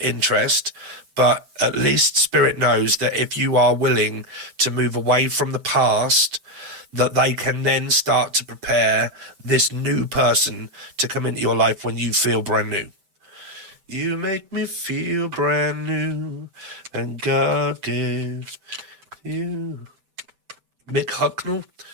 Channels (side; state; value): left; late; 7.8 ms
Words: But at least Spirit knows that if you are willing to move away from the past, that they can then start to prepare this new person to come into your life when you feel brand new. You make me feel brand new, and God gives you. Mike,